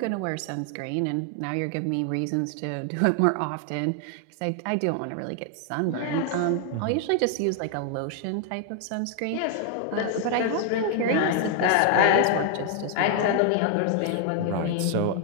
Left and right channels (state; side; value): different; both; correlation 0.00